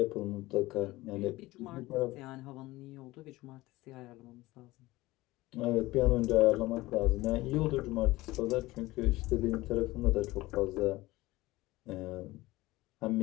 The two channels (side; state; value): right; quieter; 19.1 dB